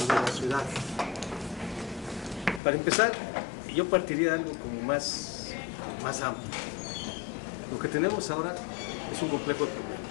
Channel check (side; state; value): right; drops out; at 2.6 s